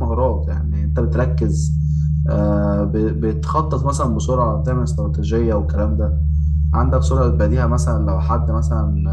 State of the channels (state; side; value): identical; both; correlation 1.00